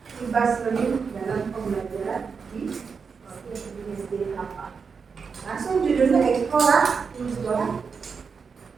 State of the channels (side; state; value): left; quieter; 5.6 dB